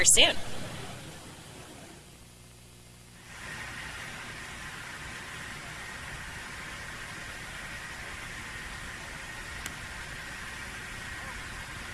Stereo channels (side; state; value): both; identical; correlation 1.00